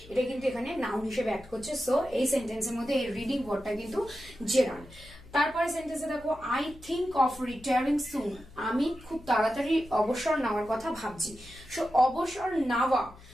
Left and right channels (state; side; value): noise; left; hum, 21 dB below the sound